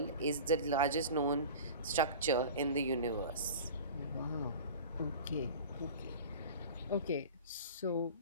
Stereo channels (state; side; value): inverted; both; correlation -0.37